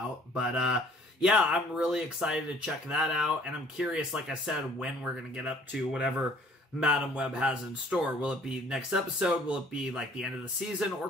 But yeah, I'm really excited to check that out, and I'm curious, like I said, when we're going to get up to whatever Madam Web has in store. Will it be next episode? Will it be like the end of the season? Or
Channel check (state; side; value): normal; both; correlation 0.56